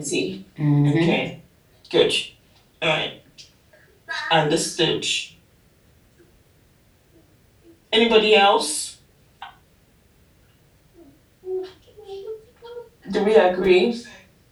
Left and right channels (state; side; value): identical; both; correlation 1.00